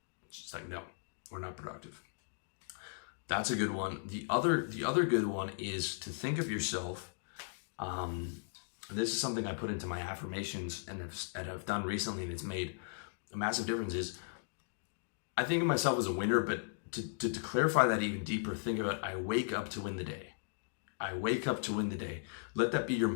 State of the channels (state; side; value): silent; right; digital silence